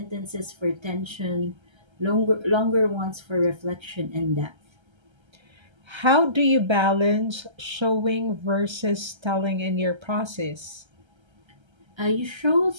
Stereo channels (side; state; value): left; late; 1.3 ms